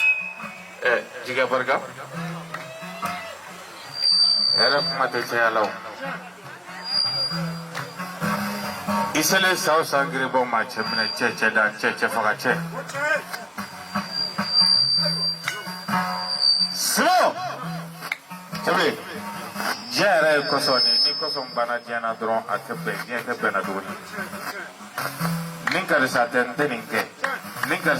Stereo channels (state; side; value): identical; both; correlation 1.00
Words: Jika bergab, era mati saya lau. Isale saus sangri bom macam mana cece dan cece fakace. Slow. Coba. Jara kosong ni kosong bana jana drone akebe na dulu. Ningkar saten teningke, ningkar